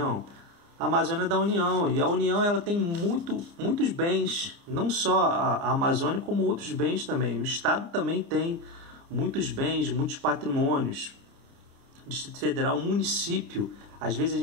A Amazônia é da União. E a União ela tem muitos bens. Não só a Amazônia, como outros bens também. O Estado também tem muitos bens, muitos patrimônios. Distrito Federal, município. Às vezes a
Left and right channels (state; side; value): late; left; 29 ms